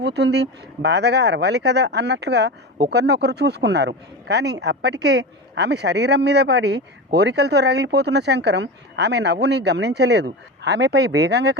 బాధగా అరవాలి కదా అన్నట్లుగా ఒకరినొకరు చూసుకున్నారు. కానీ అప్పటికే ఆమె శరీరం మీద పడి కోరికలతో రగిలిపోతున్న శంకరం ఆమె నవ్వుని గమనించలేదు. ఆమెపై వేగంగా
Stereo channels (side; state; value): both; normal; correlation 0.24